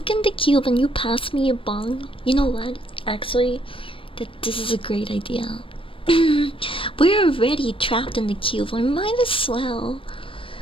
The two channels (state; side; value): late; right; 0.25 ms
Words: in the cube and you pass me a bong. You know what? Actually, this is a great idea. We're already trapped in the cube. I might as well